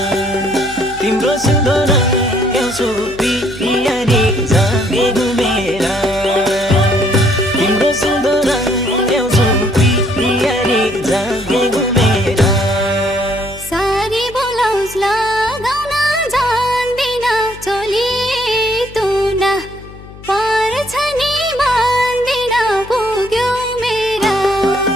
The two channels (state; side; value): noise; left; hum, 17 dB below the sound